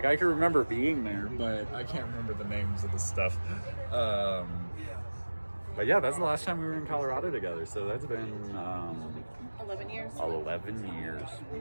I can remember being there, but I can't remember the names of the stuff. But yeah, that's the last time we were in Colorado together. So that's been 11 years. 11 years.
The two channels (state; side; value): inverted; both; correlation -1.00